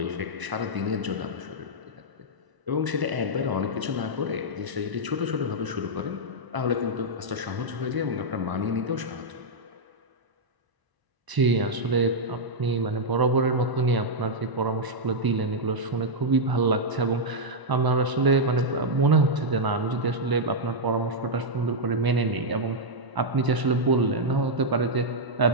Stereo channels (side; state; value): left; late; 1.0 ms